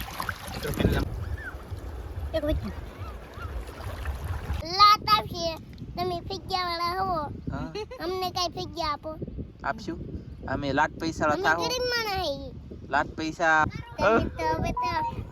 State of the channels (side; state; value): both; identical; correlation 1.00